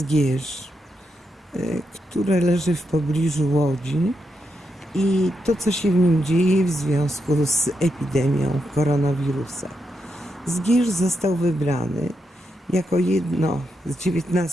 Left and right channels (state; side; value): normal; both; correlation 0.84